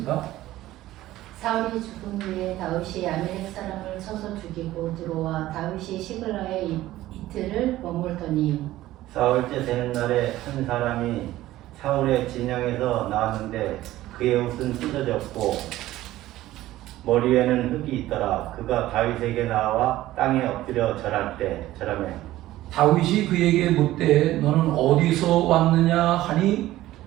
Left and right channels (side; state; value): left; quieter; 15.5 dB